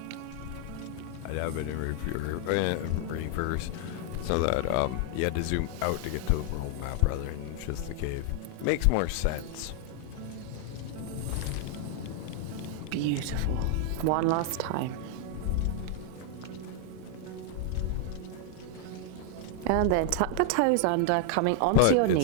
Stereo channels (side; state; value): both; different; correlation 0.00